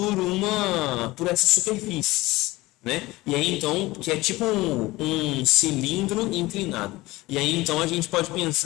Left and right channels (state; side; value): quieter; right; 19.6 dB